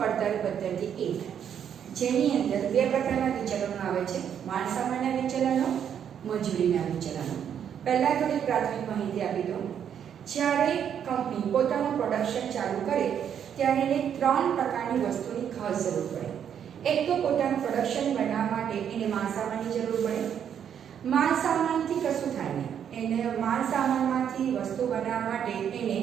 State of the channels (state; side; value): quieter; left; 8.7 dB